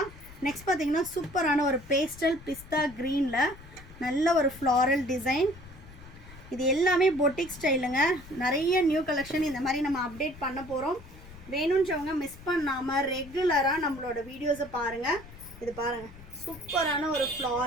நெக்ஸ்ட் பார்த்தீங்கன்னா சூப்பரான ஒரு பேஸ்டல் பிஸ்தா க்ரீனில் நல்ல ஒரு ஃப்ளாரல் டிசைன். இது எல்லாமே பொட்டிக் ஸ்டைலுங்க. நிறைய நியூ கலெக்ஷன் இந்த மாதிரி நம்ம அப்டேட் பண்ண போகிறோம். வேணுன்றவங்க மிஸ் பண்ணாமல் ரெகுலராக நம்மளோட வீடியோஸை பாருங்கள். இது பாருங்கள், சூப்பரான ஒரு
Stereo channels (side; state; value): left; noise; rumble, 18 dB below the sound